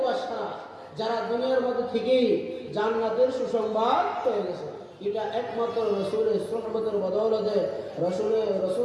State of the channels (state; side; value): identical; both; correlation 1.00